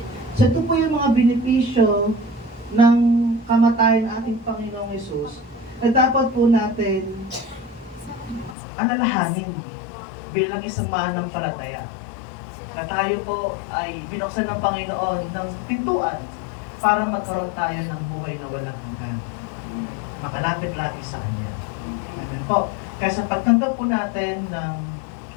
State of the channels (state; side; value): drops out; right; at 8.6 s